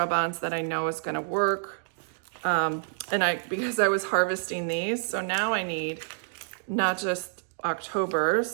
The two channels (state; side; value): silent; left; digital silence